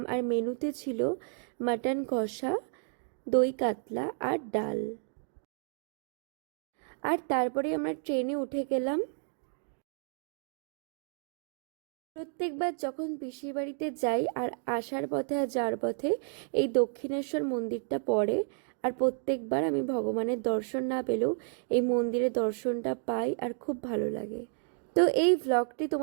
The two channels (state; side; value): silent; left; 57 dB below the other